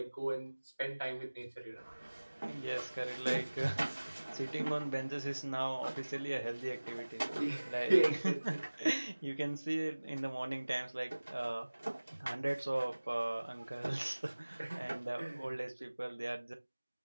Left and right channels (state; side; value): inverted; both; correlation -1.00